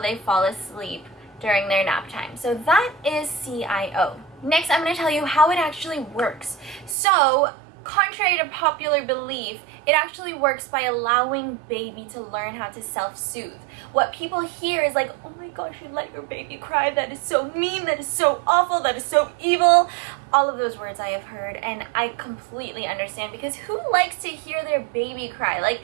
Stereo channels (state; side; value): drops out; left; at 7.0 s